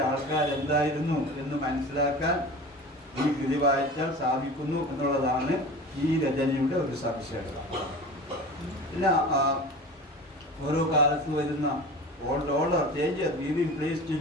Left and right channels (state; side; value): normal; both; correlation 0.35